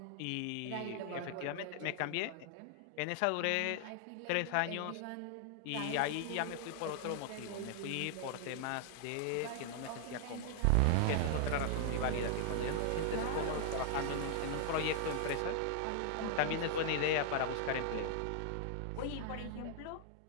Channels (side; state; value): both; different; correlation -0.01